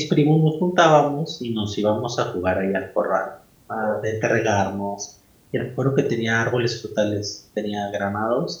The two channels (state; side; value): identical; both; correlation 1.00